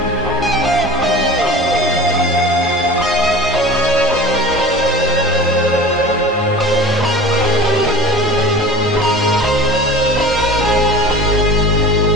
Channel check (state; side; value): normal; both; correlation 0.38